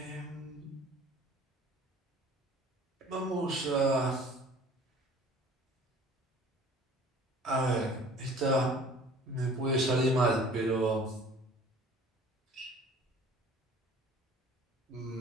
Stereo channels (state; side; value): normal; both; correlation 0.49